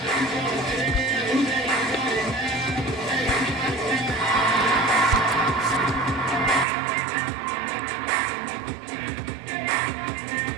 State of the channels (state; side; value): drops out; left; at 6.7 s